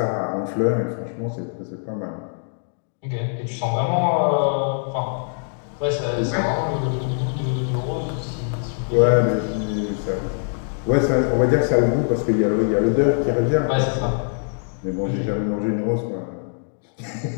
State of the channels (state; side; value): silent; right; digital silence